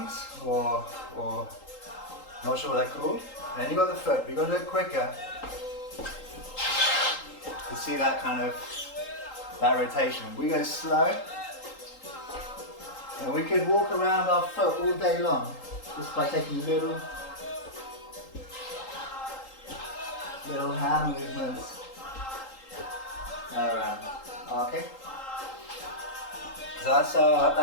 or not sure what they're called. And then you got the foot, but you got to do it quicker to see that kind of, that rotation. We go slow, and we could walk around our foot all day long, just by taking little hand movements around. Okay. So that's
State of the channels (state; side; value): late; right; 3.8 ms